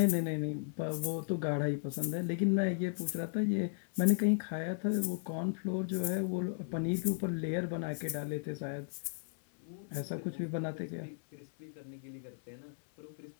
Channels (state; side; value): silent; right; 54 dB below the other